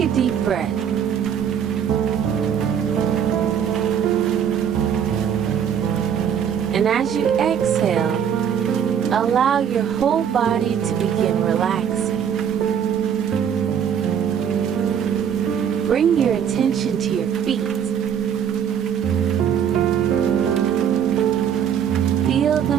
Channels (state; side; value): quieter; left; 8.4 dB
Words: deep breath. And as you exhale, allow your whole body to begin relaxing. Bring your attention to your feet. Feel